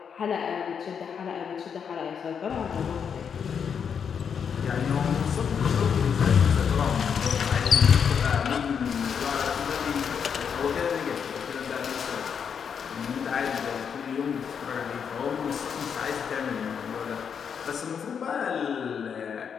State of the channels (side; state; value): right; quieter; 7.1 dB